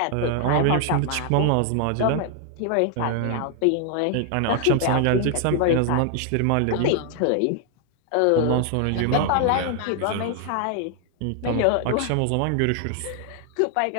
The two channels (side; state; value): both; different; correlation 0.00